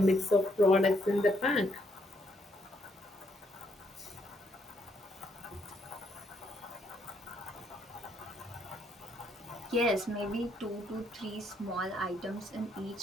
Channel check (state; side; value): normal; both; correlation 0.73